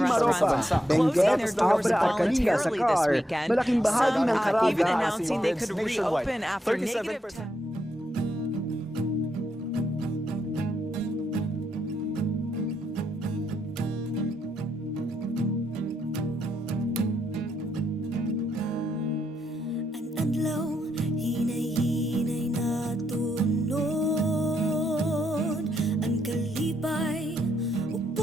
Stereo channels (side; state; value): both; normal; correlation 0.80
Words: Benguet, Abra at Kalinga sa CAR. Malaking bahagi ng Caraga even at announcing they could reopen after negative 10. Adlaw, hinay-hinay na tunod. Ang kalipay,